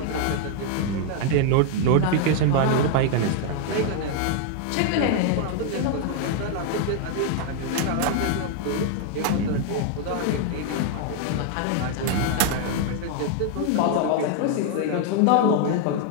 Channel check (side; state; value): both; different; correlation 0.00